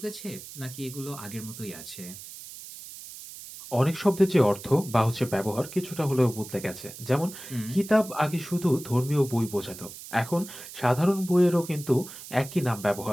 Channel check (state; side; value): noise; right; hiss, 14 dB below the sound